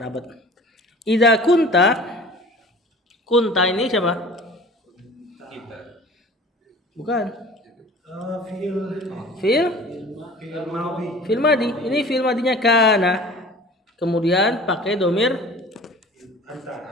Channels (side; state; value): both; normal; correlation 0.44